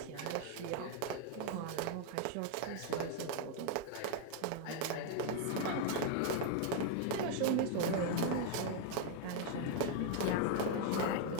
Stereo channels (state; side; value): different; both; correlation 0.00